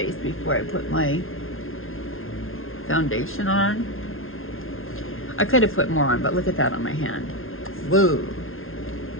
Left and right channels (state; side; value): late; right; 0.61 ms